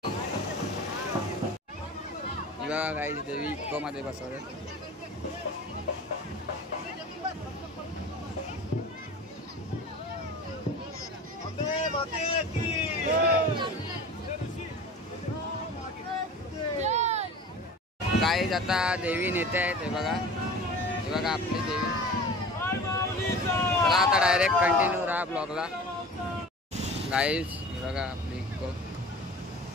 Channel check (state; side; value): normal; both; correlation 0.38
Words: बघा काही देवी इकोमध्ये बसवले. गाईज आता देवी नेते आहेत. हे बघा, हे बघा आपली देवी. चला आता डायरेक्ट कंटिन्यू राहा ब्लॉगला. गाईज हे बघा आपली इको.